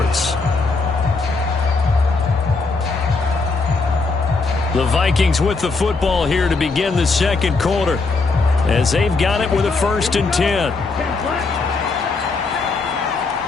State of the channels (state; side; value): quieter; right; 4.0 dB